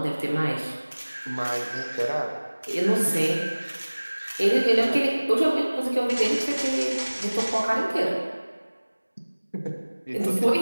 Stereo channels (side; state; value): both; inverted; correlation -1.00